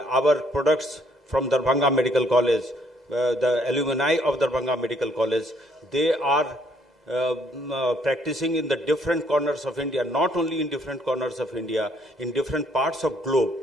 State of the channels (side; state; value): both; normal; correlation 0.67